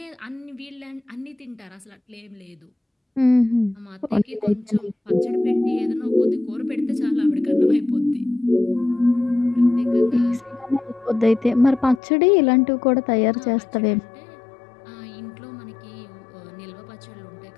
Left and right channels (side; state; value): right; drops out; at 12.0 s